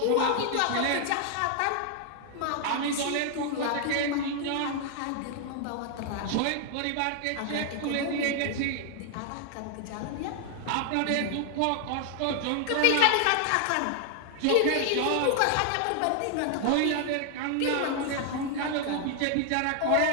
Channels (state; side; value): different; both; correlation 0.00